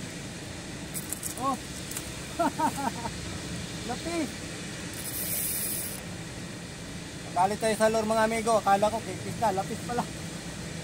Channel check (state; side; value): identical; both; correlation 1.00